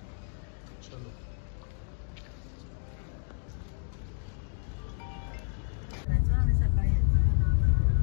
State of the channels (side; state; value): right; silent; digital silence